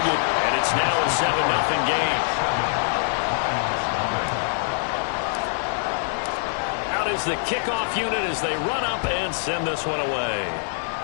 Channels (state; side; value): silent; right; 63 dB below the other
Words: And it's now a 7-0 game. Out is the kickoff unit as they run up and send this one away.